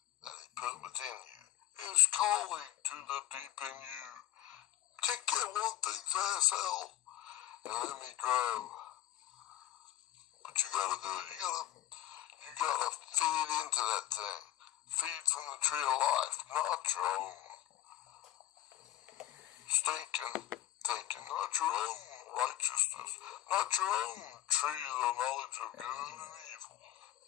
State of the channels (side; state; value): right; quieter; 13.9 dB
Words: that he put within you is calling to the deep in you. Take that one thing's ass out and let me grow. But you gotta do it. You gotta feed into that thing. Feed from the tree of life, not your own stinking thinking, not your own righteousness, not your own tree of the knowledge of good and evil.